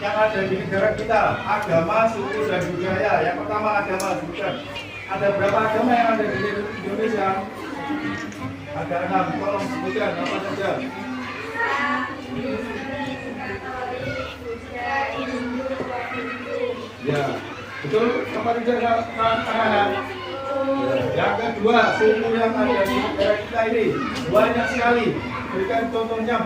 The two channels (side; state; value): both; identical; correlation 1.00